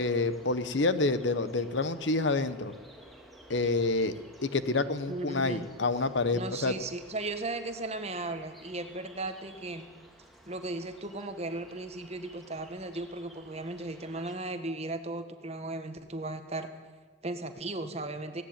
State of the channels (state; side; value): normal; both; correlation 0.03